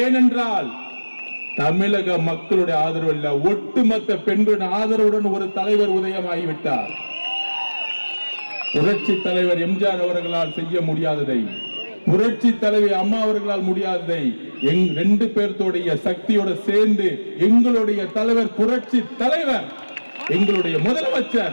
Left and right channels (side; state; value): both; inverted; correlation -1.00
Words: தமிழக மக்களுடைய ஆதரவு இல்ல, ஒட்டுமொத்த பெண்களுடைய ஆதரவுடன் ஒரு தலைவர் உதயமாகிவிட்டார். புரட்சி தலைவர் எம்ஜிஆர் அவர்களால் செய்ய முடியாததை, புரட்சி தலைவி அம்மா அவர்களால் முடியாததை ரெண்டு பேர்த்தோடைய சக்தியோட சேர்ந்து எங்களுடைய தலைவர், புரட்சி தலைவர், எங்களுடைய